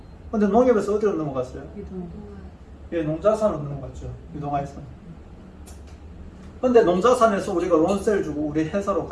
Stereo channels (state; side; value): identical; both; correlation 1.00